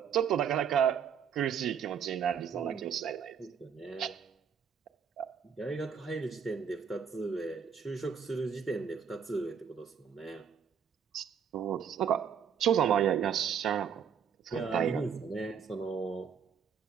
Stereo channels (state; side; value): quieter; left; 7.4 dB